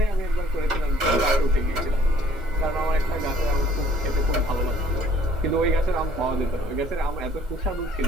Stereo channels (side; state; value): both; normal; correlation 0.58